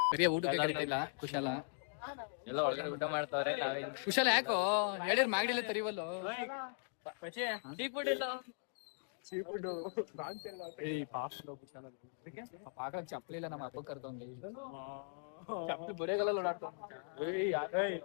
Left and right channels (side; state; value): right; silent; digital silence